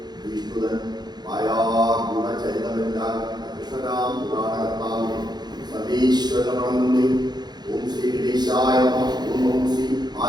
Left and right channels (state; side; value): late; left; 0.20 ms